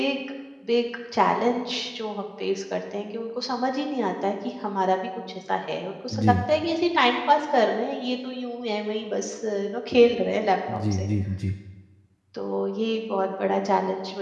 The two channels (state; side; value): identical; both; correlation 1.00